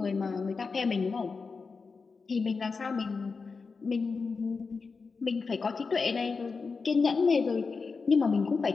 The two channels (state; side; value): quieter; right; 4.7 dB